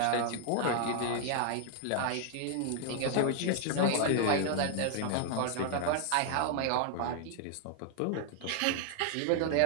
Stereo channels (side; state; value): both; different; correlation 0.00